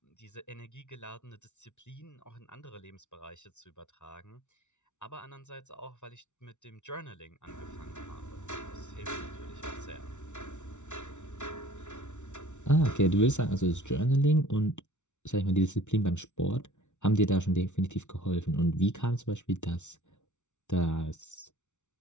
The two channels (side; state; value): right; late; 0.84 ms